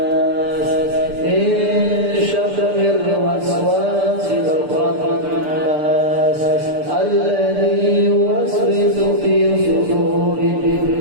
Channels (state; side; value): late; left; 6.8 ms